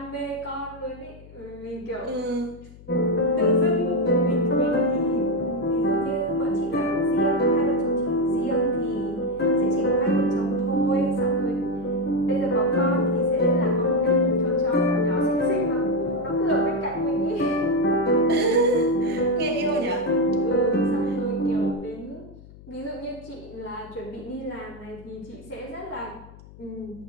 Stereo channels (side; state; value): left; noise; hum, 20 dB below the sound